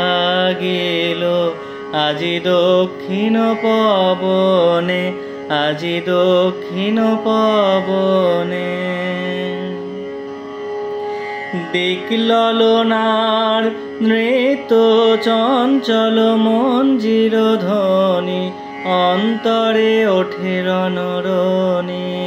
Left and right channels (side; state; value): both; identical; correlation 1.00